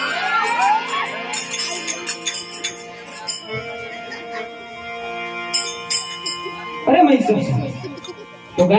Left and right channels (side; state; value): both; identical; correlation 1.00